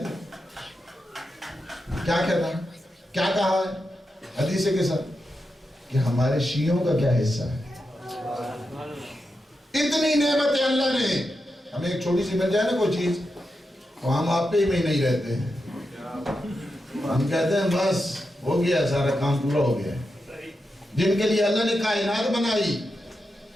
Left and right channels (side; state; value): both; normal; correlation 0.88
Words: ہیں؟ کیا کہتا ہے؟ کیا کہا ہے حدیث کے ساتھ کہ ہمارے شیعوں کا کیا حصہ ہے؟ اتنی نعمتیں اللہ نے ہمیں. ایک چھوٹی سی مل جائے نا کوئی چیز تو ہم آپ پہ ہی میں نہیں رہتے ہیں. ہم کہتے ہیں بس ہو گیا سارا کام پورا ہو گیا. جن کے لیے اللہ نے کائنات بنائی